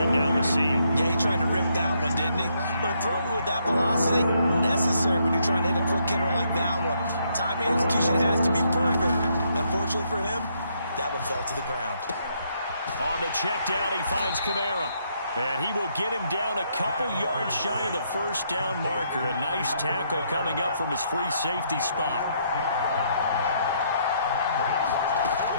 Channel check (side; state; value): both; inverted; correlation -0.73